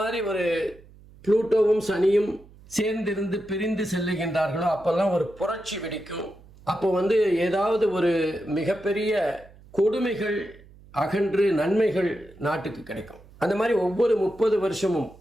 மாதிரி ஒரு புளூட்டோவும் சனியும் சேர்ந்திருந்து பிரிந்து செல்லுகின்றார்களோ அப்போல்லாம் ஒரு புரட்சி வெடிக்கும். அப்போ ஏதாவது ஒரு மிகப்பெரிய கொடுமைகள் அகன்று நன்மைகள் நாட்டுக்கு கிடைக்கும். அந்த மாதிரி ஒவ்வொரு 30 வருஷமும்,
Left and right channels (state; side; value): noise; right; hum, 23 dB below the sound